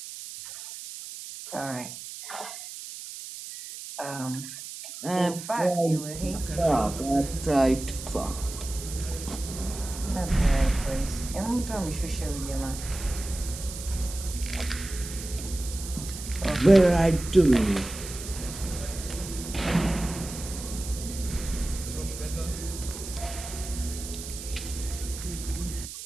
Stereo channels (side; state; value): right; noise; hiss, 10 dB below the sound